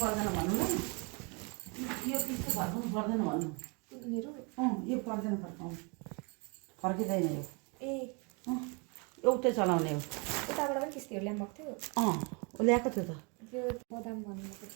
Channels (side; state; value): left; quieter; 32.6 dB